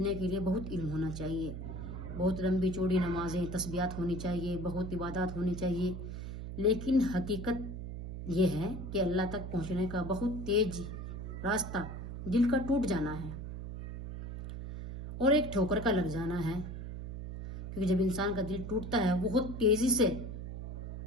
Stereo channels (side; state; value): right; noise; hum, 7 dB below the sound